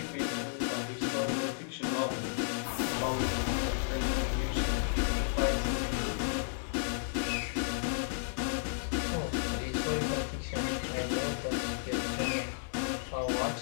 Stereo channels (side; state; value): right; silent; 56 dB below the other